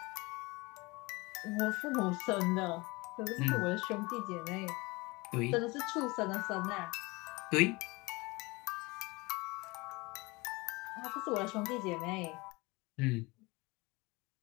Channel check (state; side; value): quieter; right; 24.2 dB